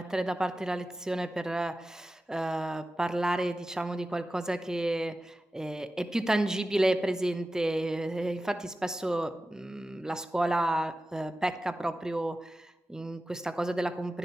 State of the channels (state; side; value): normal; both; correlation 0.94